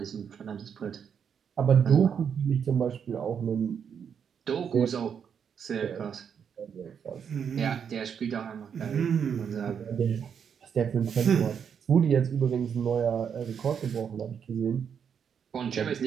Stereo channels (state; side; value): quieter; left; 7.5 dB